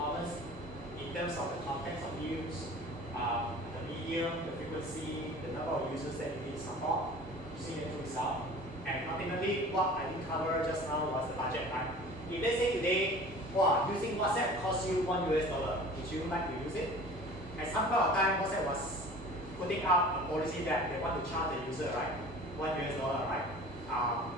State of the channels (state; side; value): normal; both; correlation 0.43